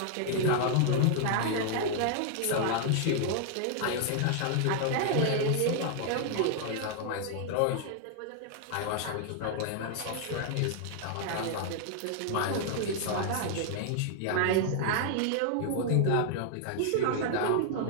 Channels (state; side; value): different; both; correlation 0.00